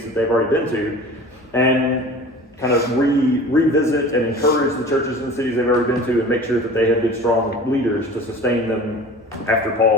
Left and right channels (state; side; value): normal; both; correlation 0.40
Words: that they've already been to, and kind of revisit and encourage the churches in the cities they've already been to, and make sure that they have good, strong leaders to sustain them after